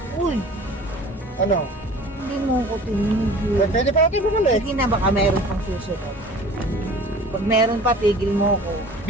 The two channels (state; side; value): normal; both; correlation 0.44